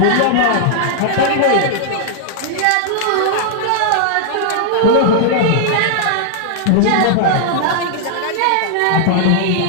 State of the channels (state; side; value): different; both; correlation -0.01